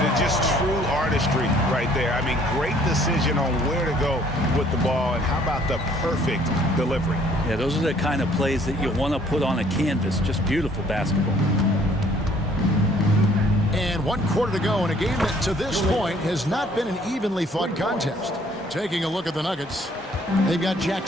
Just true artistry right there. I mean, great decision on where to go with the ball, and how about the perfect delivery? Yeah, those are the kind of plays that you want to put on a canvas. Just beautiful basketball. And 1 quarter to go in a game that to this point has not been an evenly fought contest. Taking a look at the Nuggets, they've got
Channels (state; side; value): normal; both; correlation 0.60